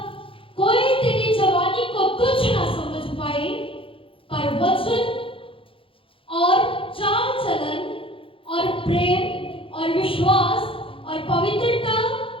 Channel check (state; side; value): late; right; 0.26 ms